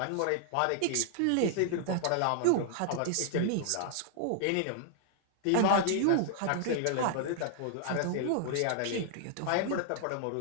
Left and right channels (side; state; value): both; different; correlation -0.01